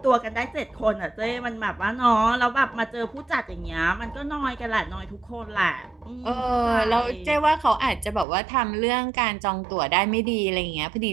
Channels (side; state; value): left; drops out; at 8.2 s